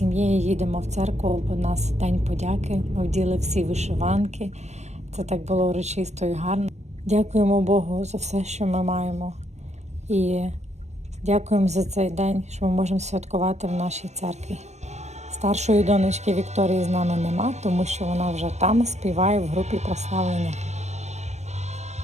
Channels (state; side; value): late; left; 0.33 ms